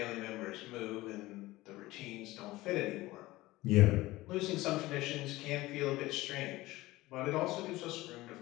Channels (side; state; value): right; quieter; 18.6 dB